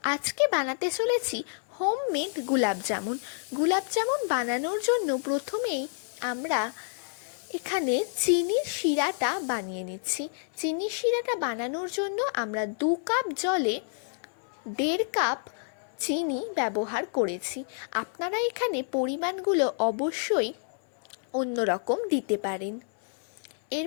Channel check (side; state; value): right; silent; 59 dB below the other